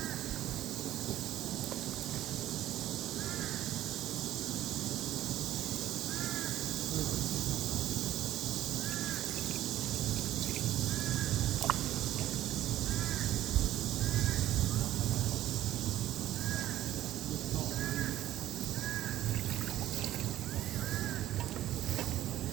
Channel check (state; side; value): quieter; left; 13.5 dB